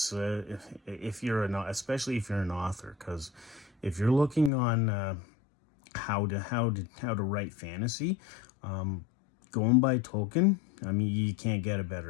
especially if you're an author, because if you're looking on how to write fantasy, going by Tolkien, I mean, you can't get a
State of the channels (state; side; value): drops out; right; at 4.5 s